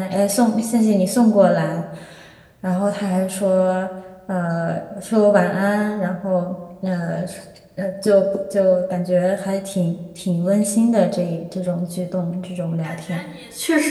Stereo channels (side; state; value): both; identical; correlation 1.00